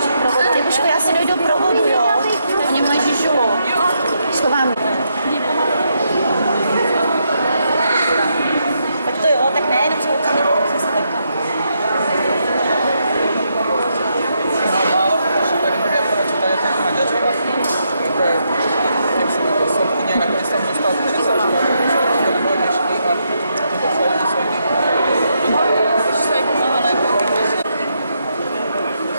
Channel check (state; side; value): inverted; both; correlation -0.79